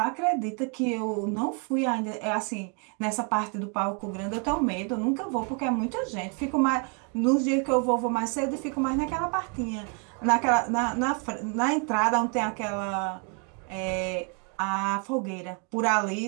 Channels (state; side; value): quieter; left; 37.4 dB